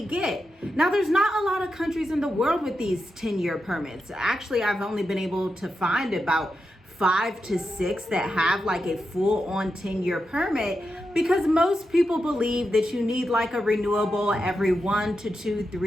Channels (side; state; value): both; normal; correlation 0.87